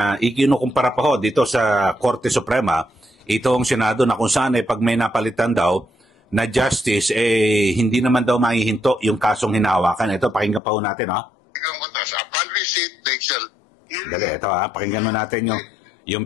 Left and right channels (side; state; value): right; drops out; at 10.6 s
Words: ikinukumpara pa dito sa Korte Suprema itong Senado na kung saan pag may napalitan daw na justice, hindi naman daw mahihinto yung kasong hinahawakan. Ito, pakinggan pa natin, Upon receipt, they shall... Dali, ito, pakinggan mo natin yung